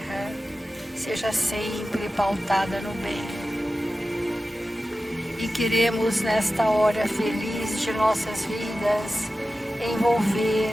seja sempre pautada no bem. E queremos, nesta hora feliz de nossas vidas,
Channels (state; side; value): normal; both; correlation 0.94